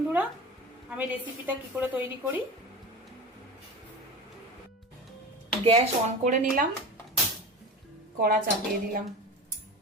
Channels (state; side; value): normal; both; correlation 0.29